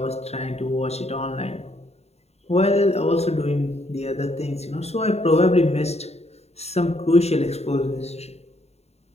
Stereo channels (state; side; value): late; right; 0.31 ms